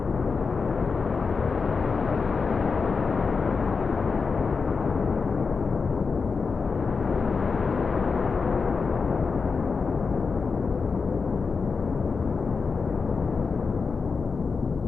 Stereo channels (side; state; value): right; quieter; 4.9 dB